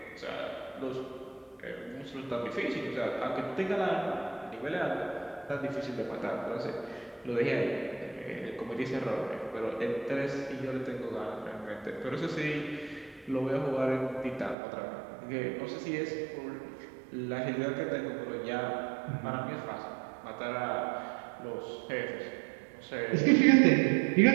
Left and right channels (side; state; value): left; drops out; at 14.6 s